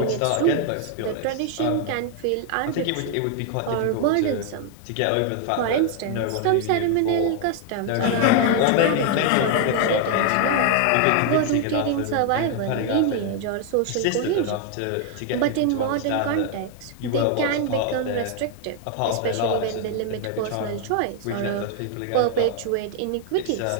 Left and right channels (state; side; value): different; both; correlation 0.00